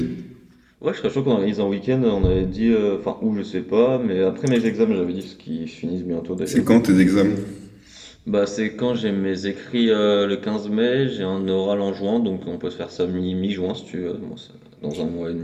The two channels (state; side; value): identical; both; correlation 1.00